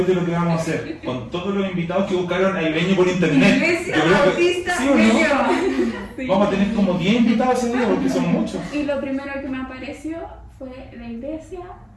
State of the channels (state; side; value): identical; both; correlation 1.00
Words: que vamos a hacer, con todos los invitados que buscaron a Ibeño por internet. Iglesia Yo creo que- Bautista ¿sí o no? Ñuñoa. Sí. Vamos a tener como 10 invitados ese día porque son muchos. Y lo primero que me apareció fue la iglesia,